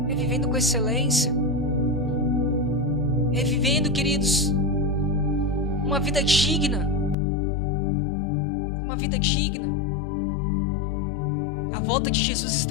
É vivendo com excelência. É vivendo, queridos, uma vida digna. Uma vida digna. A volta de Jesus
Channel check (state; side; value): drops out; right; at 7.2 s